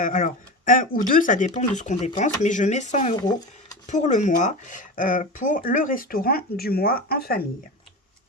1 ou 2, ça dépend de ce qu'on dépense. Mais je mets 100 € pour le mois, pour le restaurant du mois en famille.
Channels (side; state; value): both; normal; correlation 0.26